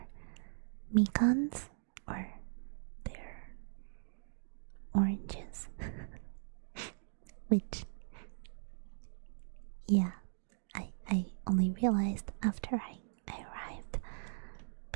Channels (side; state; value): left; silent; digital silence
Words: mikans or their oranges. Which, yeah, I only realized after I arrived,